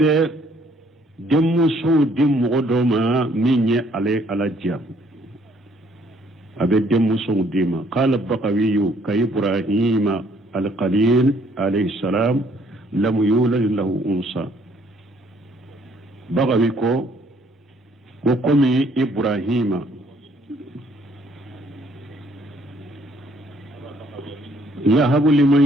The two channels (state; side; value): normal; both; correlation 0.64